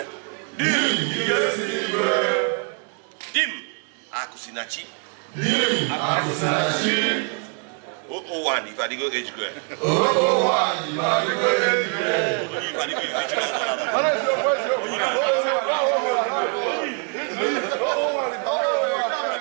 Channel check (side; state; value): left; quieter; 39.4 dB